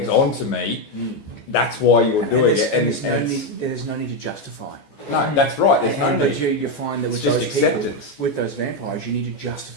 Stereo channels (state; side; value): late; right; 14 ms